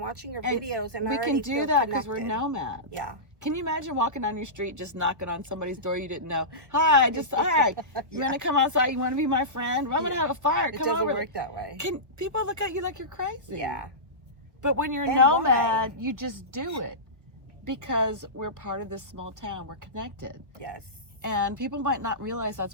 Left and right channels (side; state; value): left; late; 1.1 ms